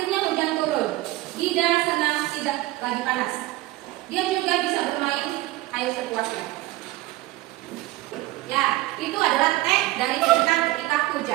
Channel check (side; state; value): left; quieter; 18.1 dB